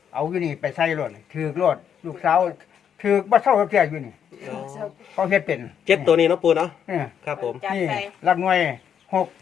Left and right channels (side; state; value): right; quieter; 8.3 dB